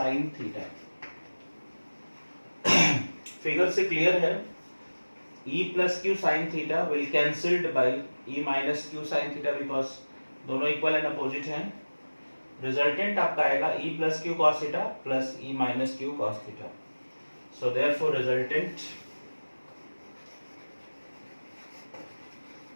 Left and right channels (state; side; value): inverted; both; correlation -1.00